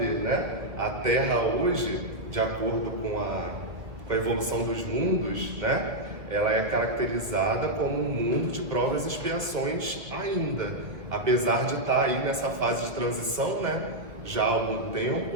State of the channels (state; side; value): late; left; 1.6 ms